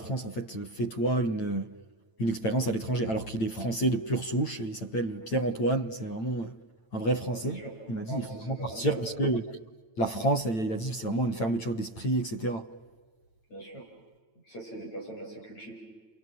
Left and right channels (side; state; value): right; late; 9.0 ms